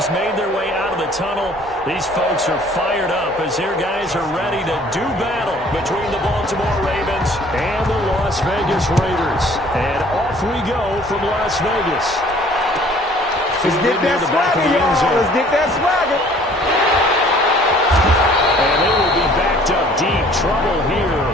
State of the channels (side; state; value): both; normal; correlation 0.54